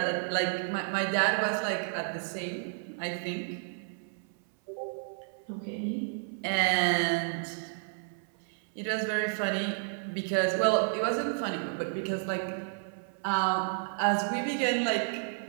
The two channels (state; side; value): silent; left; 57 dB below the other